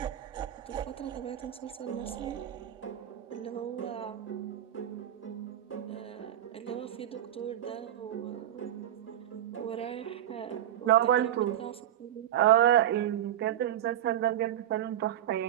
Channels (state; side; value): quieter; left; 11.7 dB